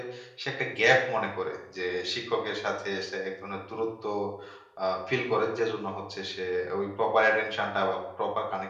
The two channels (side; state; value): both; identical; correlation 1.00